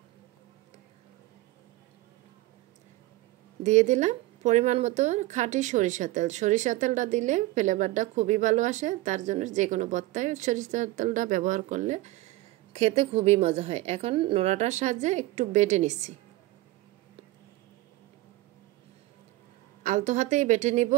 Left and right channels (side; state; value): left; quieter; 18.1 dB